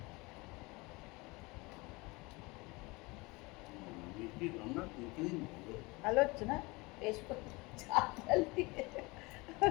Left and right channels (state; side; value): quieter; right; 24.6 dB